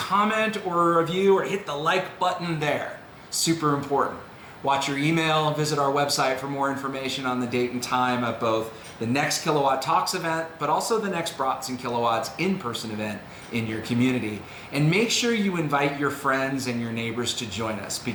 or a review or hit the like button there. Super important. Watch your email and visit our website for more information on the date and time of both the next Kilowatt Talks event, but also the next Brats and Kilowatts in-person event in your community. And make sure you invite your friends and your neighbors to join us,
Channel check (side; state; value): both; identical; correlation 1.00